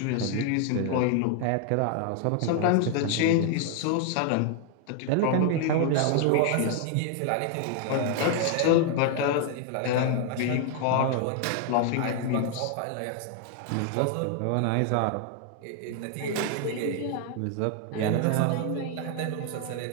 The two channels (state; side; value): different; both; correlation 0.00